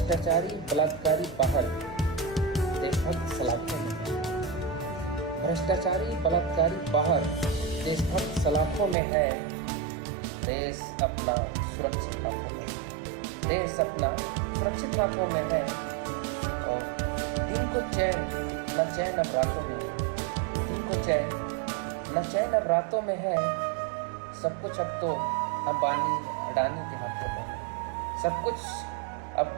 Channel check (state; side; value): drops out; left; at 9.0 s